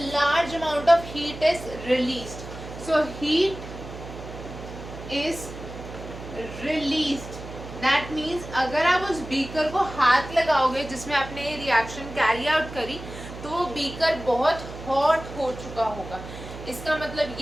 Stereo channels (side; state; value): right; noise; hum, 12 dB below the sound